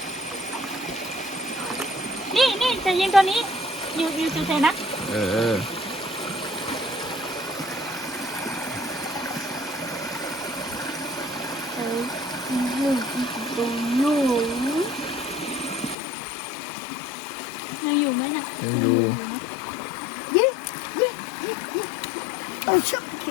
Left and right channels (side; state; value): right; drops out; at 16.0 s